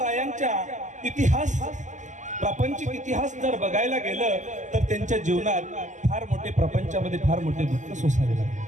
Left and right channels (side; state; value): left; late; 0.36 ms